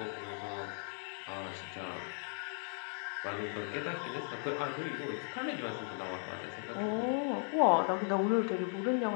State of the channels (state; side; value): silent; right; 53 dB below the other